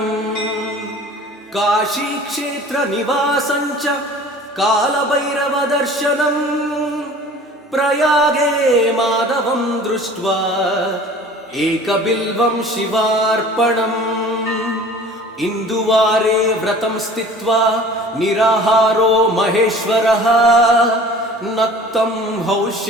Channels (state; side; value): normal; both; correlation 0.45